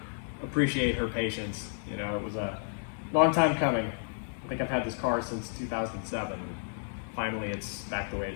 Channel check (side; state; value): right; silent; digital silence